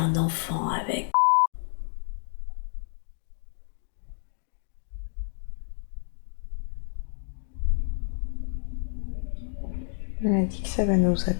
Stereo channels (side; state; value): right; silent; digital silence